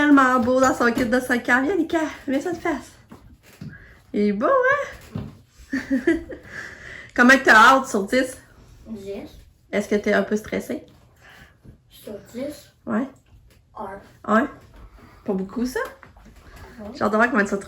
beau dans son kit de soccer. Viens Lucas, mets ça de face. Il est beau, hein? Comment que t'as hâte sur 10? 10. Est-ce que t'es un peu stressé? Sur 10. Ouais. 1. Ouais? Pas beaucoup, ça? J'ai hâte de voir comment tu vas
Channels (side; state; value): both; identical; correlation 1.00